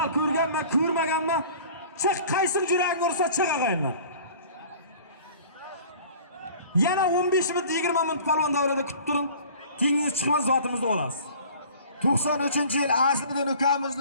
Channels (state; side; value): inverted; both; correlation -0.46